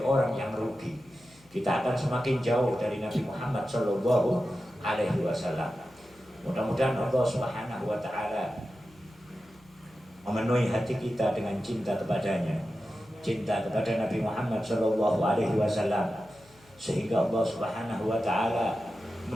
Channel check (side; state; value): left; noise; hum, 28 dB below the sound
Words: orang yang rugi. Kita akan semakin jauh dari Nabi Muhammad SAW. Mudah-mudahan Allah Subhanahu wa Ta'ala memenuhi hati kita dengan cinta kepadanya. cinta kepada Nabi Muhammad Shallallahu Alaihi Wasallam, sehingga Allah Subhanahu Wa Taala